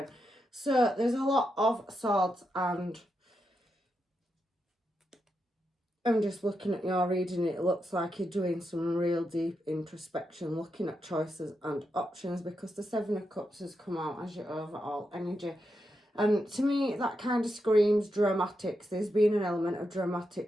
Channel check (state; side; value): normal; both; correlation 0.85